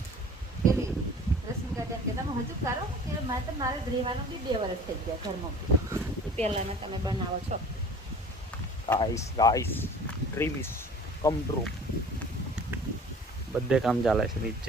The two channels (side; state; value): both; normal; correlation 0.45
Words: પેલી રશ્મિકા બેન કે તમે હજુ કરો કે મેં તો મારે રહેવાનું બી 2 વર્ષ થઈ ગયા ઘરમાં. પહેલાના તમે બનાવો છો. Guys dream is come true. બધે કામ ચાલે છે